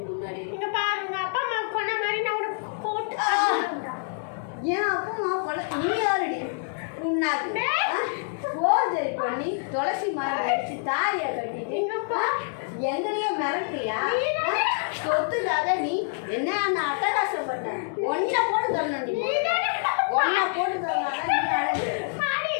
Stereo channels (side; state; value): right; silent; digital silence